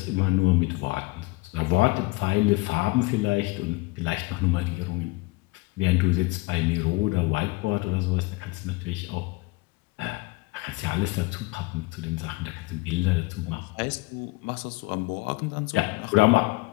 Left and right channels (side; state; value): right; quieter; 23.6 dB